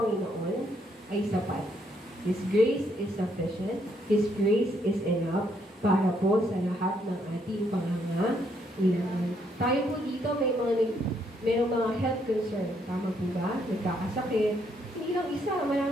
ay sapat. His grace is sufficient. His grace is enough para po sa lahat ng ating pangangailangan. Tayo po dito mayroong mga health concern. Tama po ba? Nagkakasakit. Hindi lang isa.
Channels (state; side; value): normal; both; correlation 0.72